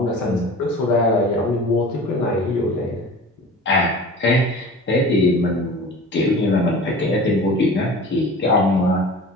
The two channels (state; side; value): normal; both; correlation 0.39